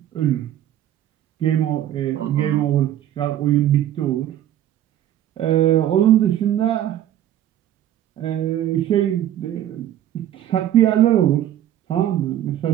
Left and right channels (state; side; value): quieter; left; 11.8 dB